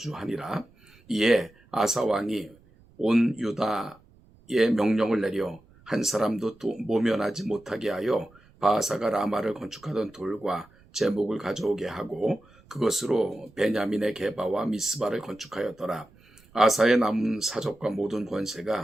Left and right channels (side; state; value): right; noise; rumble, 28 dB below the sound